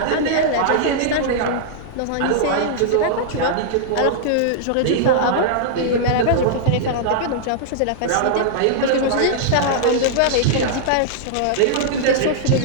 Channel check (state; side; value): different; both; correlation -0.02